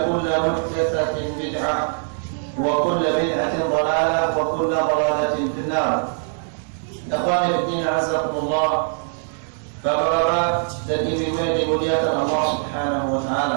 محدثة بدعة وكل بدعة ضلالة وكل ضلالة في النار. Ikhwani fiddin azakumullah. Bapak-bapak dan ibu-ibu yang dimuliakan Allah Subhanahu wa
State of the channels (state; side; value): silent; left; 60 dB below the other